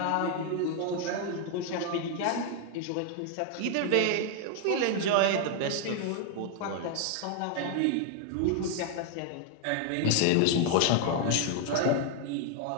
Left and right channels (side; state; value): both; different; correlation 0.00